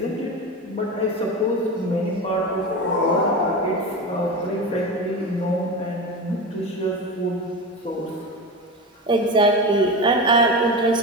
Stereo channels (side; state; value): both; normal; correlation 0.24